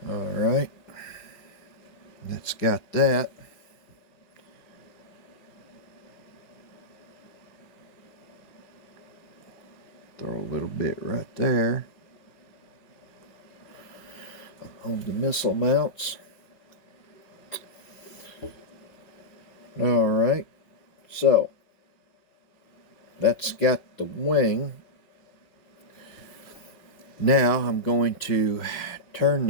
All right, that's got that. Throw a little bit right there on the missile mounts. All right, so that's got the wing. Now I'm going to turn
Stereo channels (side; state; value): right; late; 5.4 ms